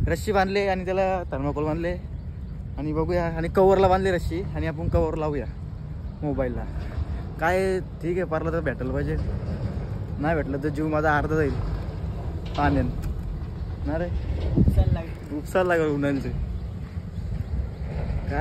रस्सी बांधले आणि त्याला थर्माकोल बांधले आणि बघूया. आणि कवरला बांधले रस्सी, आणि आपण कवर लावूया मोबाईलला. काय ठीक आहे, पारलं तर भेटायला पाहिजे. नाही भेटलं तर जीव माझा अर्धा जाईल पाण्यान ना रे. उपसायला लागल उन्हाळ्याचे.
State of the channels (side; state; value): both; identical; correlation 1.00